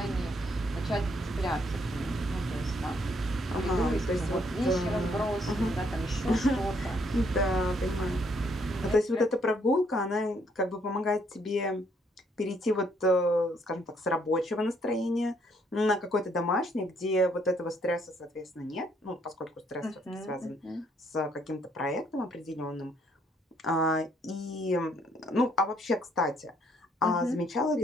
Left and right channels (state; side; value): normal; both; correlation 0.69